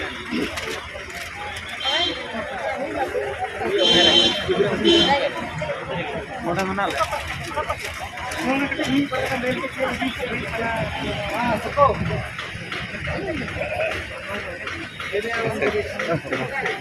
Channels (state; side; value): identical; both; correlation 1.00